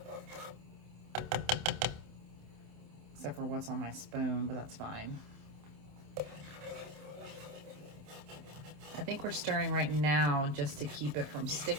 Except for what's on my spoon, but that's fine. I think we're stirring right now just to keep it from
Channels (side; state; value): left; late; 27 ms